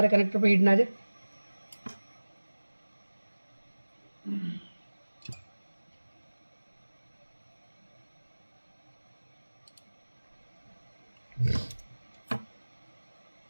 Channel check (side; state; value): both; inverted; correlation -1.00